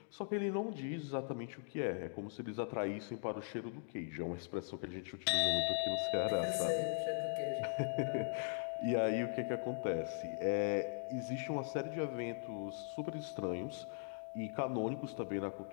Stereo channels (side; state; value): right; silent; digital silence